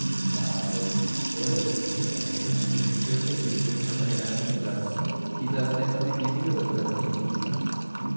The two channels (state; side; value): inverted; both; correlation -1.00